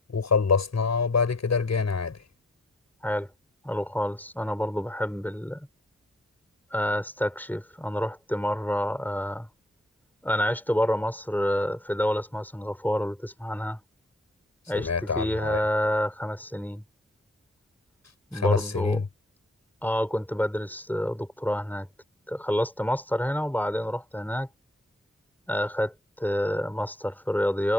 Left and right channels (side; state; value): both; normal; correlation 0.66